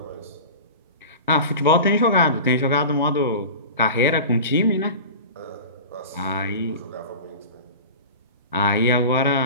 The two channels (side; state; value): both; inverted; correlation -0.33